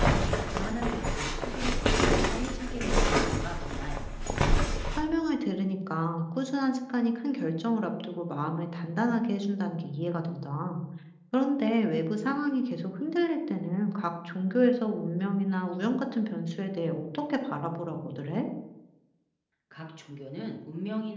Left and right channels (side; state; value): both; identical; correlation 1.00